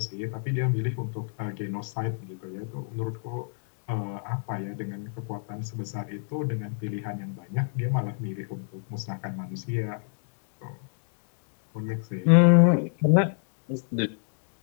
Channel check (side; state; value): right; silent; digital silence